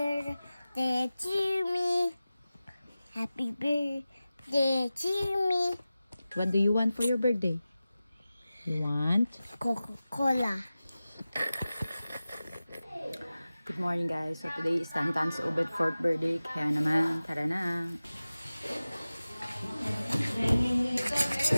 to me. Happy birthday to me. What do you want for your birthday? You want? Coca-Cola. Good morning guys. So today is Tantan's Ubed 4th birthday. Kaya naman, tara na.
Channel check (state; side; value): inverted; both; correlation -0.96